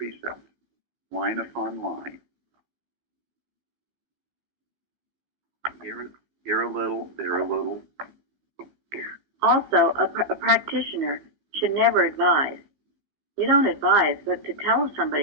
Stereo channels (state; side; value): late; left; 15 ms